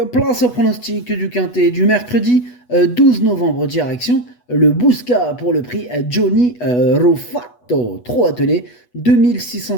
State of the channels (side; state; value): right; late; 8.2 ms